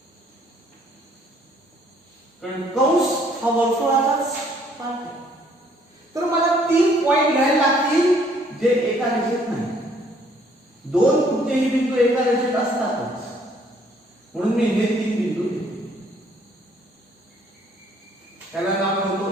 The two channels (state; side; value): normal; both; correlation 0.63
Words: कारण कंस हा वर्तुळाचाच पार्ट आहे. तर मला 3 पॉइंट घ्यायला लागतील जे एका रेषेत नाही. 2 कुठलेही बिंदू एका रेषेत असतातच, म्हणून मी हे 3 बिंदू घेतो. ह्याला नाव